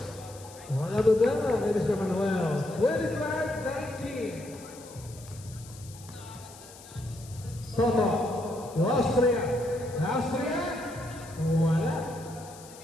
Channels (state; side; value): noise; left; hiss, 19 dB below the sound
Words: Wala ba ba ni Mr. Manuel? 25-19. Toto. Austria. Austria. Wala.